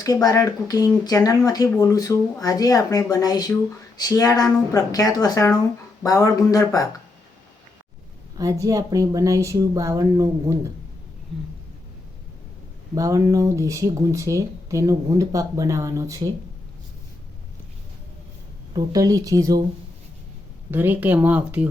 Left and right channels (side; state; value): right; quieter; 3.2 dB